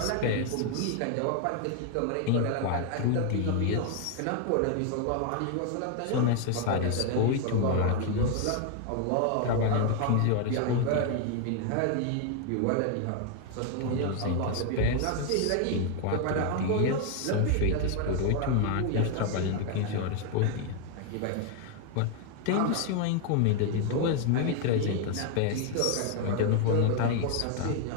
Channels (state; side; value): different; both; correlation 0.00